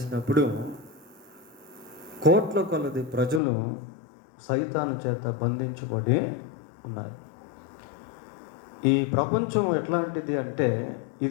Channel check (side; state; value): right; drops out; at 3.4 s